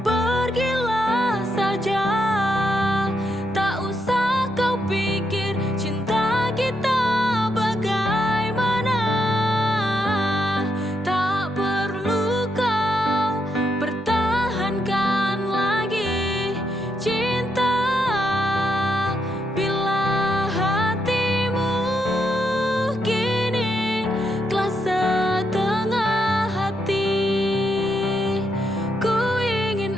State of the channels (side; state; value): both; normal; correlation 0.80